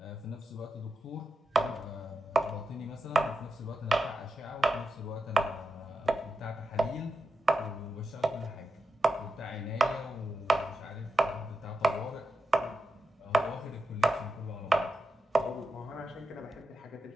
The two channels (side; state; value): both; normal; correlation 0.89